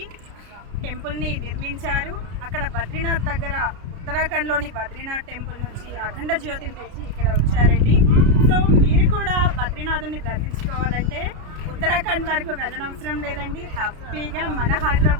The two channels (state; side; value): late; left; 33 ms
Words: టెంపుల్ని నిర్మించారు. అక్కడ బద్రీనాథ్ దగ్గర ఉత్తరాఖండ్లోని బద్రీనాథ్ టెంపుల్ నుంచి అఖండ జ్యోతిని తెచ్చి ఇక్కడ వచ్చారండి. సో మీరు కూడా బద్రీనాథుని దర్శించుకోవాలంటే ఉత్తరాఖండ్ వరకు వెళ్ళనవసరం లేదండి. హ్యాపీగా మన